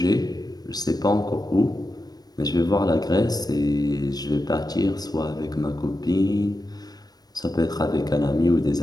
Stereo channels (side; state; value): right; late; 0.19 ms